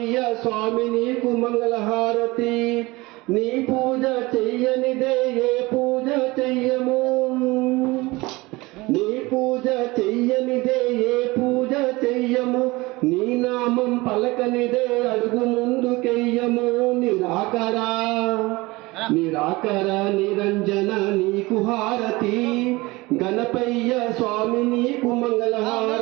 స్వామి నీకు మంగళహారతి. నీ పూజ చెయ్యనిదే ఏ పూజ చెయ్యము, నీ పూజ చెయ్యనిదే ఏ పూజ చెయ్యము. నీ నామం పలకనిదే అడుగు ముందుకెయ్యము. నిరాకర నిరంజన నీకు హారతి, గణపయ్య స్వామి నీకు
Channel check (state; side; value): quieter; left; 22.0 dB